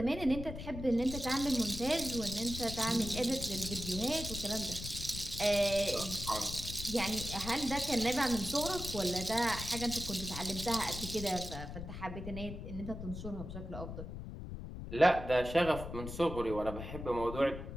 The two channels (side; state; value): left; noise; rumble, 8 dB below the sound